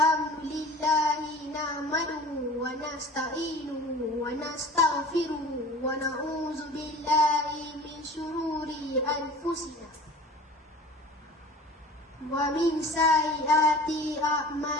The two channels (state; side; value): normal; both; correlation 0.42